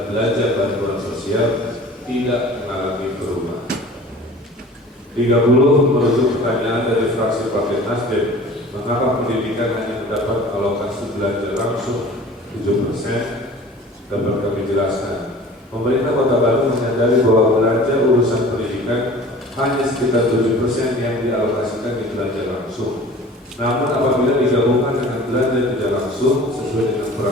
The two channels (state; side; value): normal; both; correlation 0.44